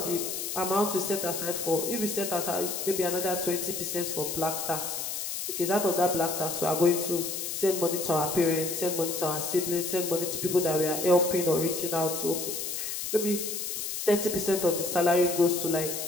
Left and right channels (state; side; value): noise; left; hiss, 4 dB below the sound